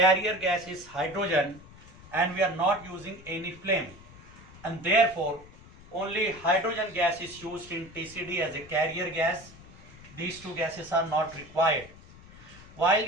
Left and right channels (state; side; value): noise; left; rumble, 20 dB below the sound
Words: gas is hydrogen and we are not using any flame, and therefore only hydrogen gas is used in TCD as a carrier gas. These two gases are not required. While